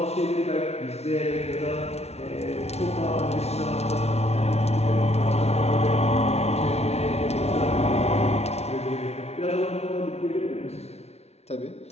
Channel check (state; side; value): late; right; 0.31 ms